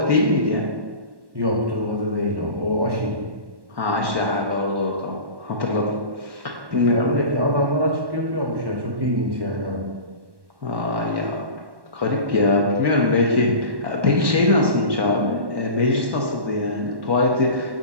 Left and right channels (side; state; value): left; late; 1.1 ms